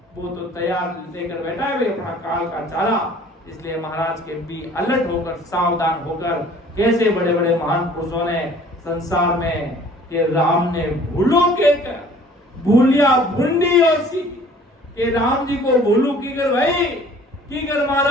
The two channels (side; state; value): both; normal; correlation 0.52